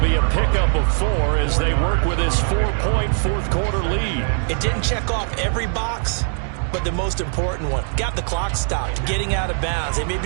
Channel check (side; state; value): left; silent; 55 dB below the other